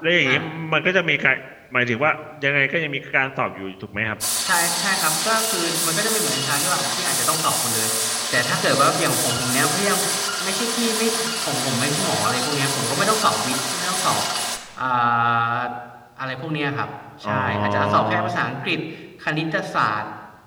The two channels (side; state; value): both; identical; correlation 1.00